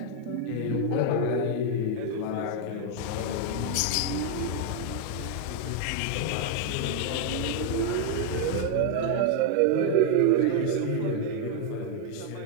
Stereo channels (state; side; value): different; both; correlation 0.00